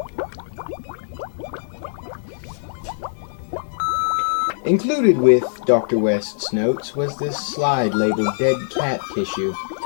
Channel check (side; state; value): right; silent; digital silence